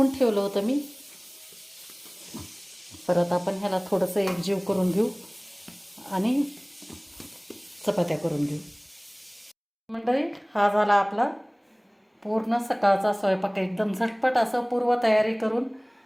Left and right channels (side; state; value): both; identical; correlation 1.00